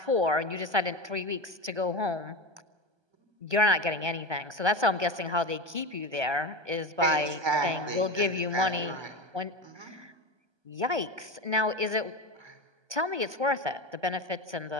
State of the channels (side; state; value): left; late; 1.2 ms